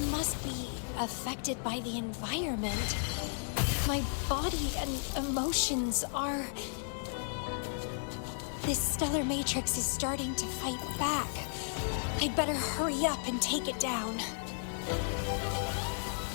must be affected by the environment. My body and emotions are... This stellar matrix is starting to fight back. I'd better hurry up and take it down.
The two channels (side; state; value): right; silent; digital silence